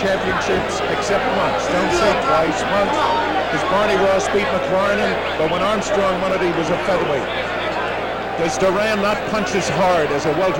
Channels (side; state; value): both; identical; correlation 1.00